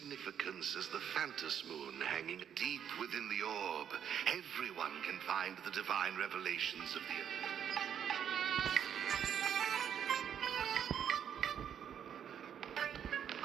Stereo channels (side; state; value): left; quieter; 8.8 dB